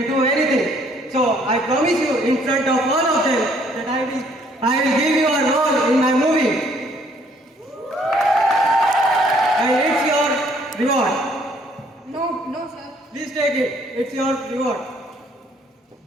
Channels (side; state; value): both; normal; correlation 0.63